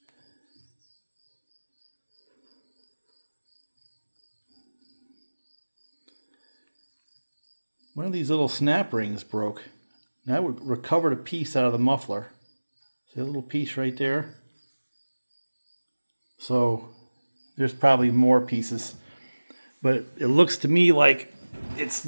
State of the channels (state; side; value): inverted; both; correlation -1.00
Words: One of these little snap rings broke. And I recovered a piece out of the muffler. See a little piece right there? So there's probably more pieces. But it looks to me like it